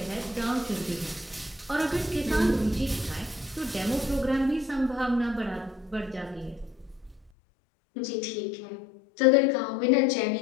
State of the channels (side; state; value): right; drops out; at 7.3 s